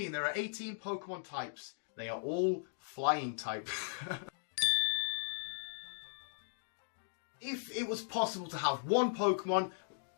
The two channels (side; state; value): right; silent; digital silence